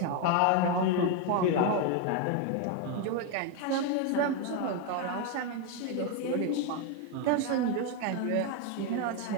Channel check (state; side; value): different; both; correlation 0.02